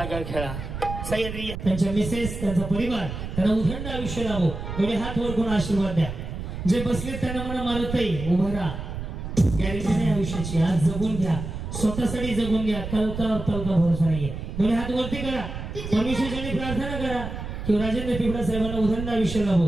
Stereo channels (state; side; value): noise; right; rumble, 7 dB below the sound